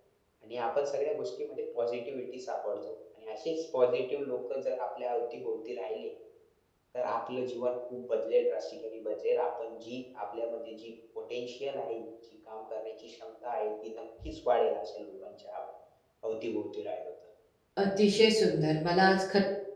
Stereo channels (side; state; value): both; identical; correlation 1.00